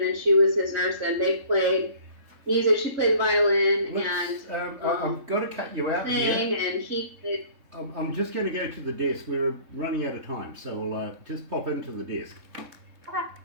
and she was his nurse, and they played music. She played violin I've got to cut you out here. And he played. I'm just going to go to the desk. We're running out of time, so I'll just pop into the desk. Okay.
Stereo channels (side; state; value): left; late; 3.6 ms